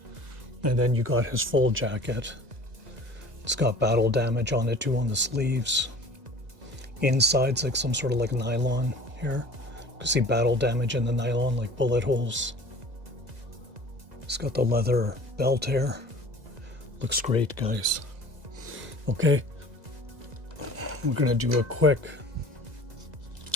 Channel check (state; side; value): late; left; 2.0 ms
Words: And then you got his full jacket. It's got battle damage on it too on the sleeves. Inside's like some sort of like nylon here. You can see battle damage in the nylon, like bullet holes. It's got the leather belt here. Looks great, guys. Okay, we're gonna do a quick